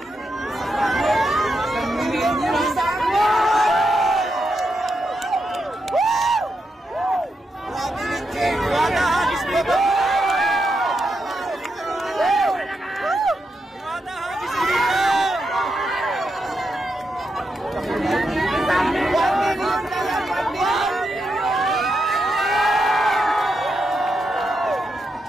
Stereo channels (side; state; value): both; normal; correlation 0.84